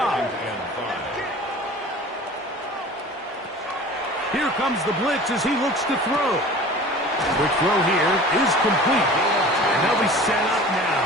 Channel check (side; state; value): both; normal; correlation 0.41